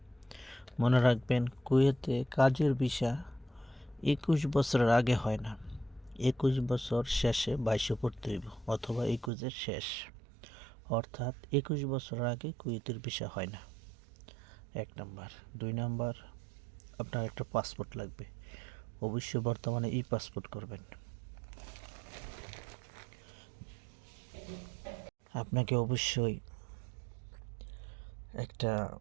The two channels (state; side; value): drops out; left; at 9.3 s